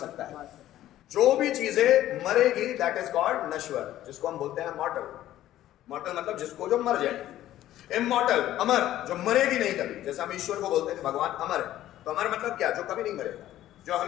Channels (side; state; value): right; quieter; 13.5 dB